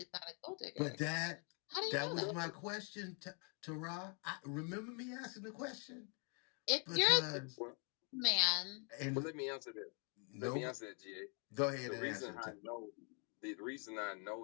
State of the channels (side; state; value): right; quieter; 38.5 dB